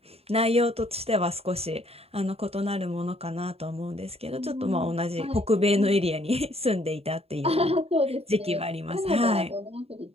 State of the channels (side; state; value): left; late; 0.29 ms